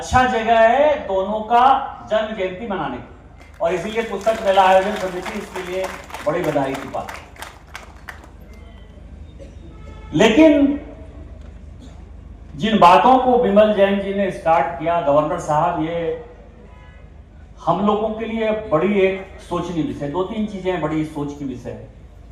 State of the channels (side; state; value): both; identical; correlation 1.00